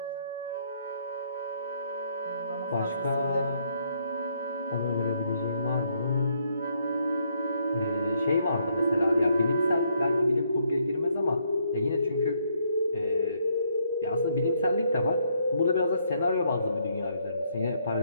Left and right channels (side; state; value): both; inverted; correlation -0.71